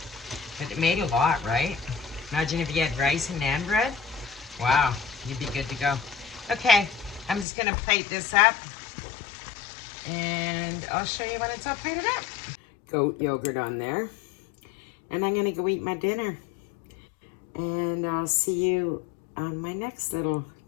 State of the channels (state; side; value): drops out; right; at 7.5 s